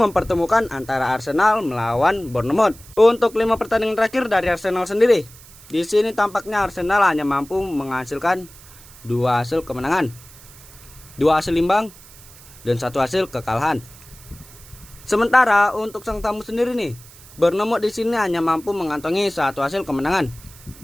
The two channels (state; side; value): noise; right; hiss, 21 dB below the sound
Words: antara Arsenal melawan Bournemouth. Untuk 5 pertandingan terakhir dari Arsenal sendiri, di sini tampaknya Arsenal hanya mampu menghasilkan 2 hasil kemenangan, 2 hasil imbang dan 1 hasil kekalahan. Sementara untuk sang tamu sendiri nih, Bournemouth di sini hanya mampu mengantongi 1 hasil kemenangan,